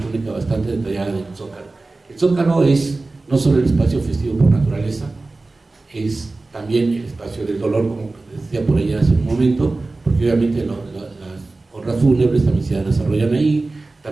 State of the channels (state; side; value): quieter; left; 3.3 dB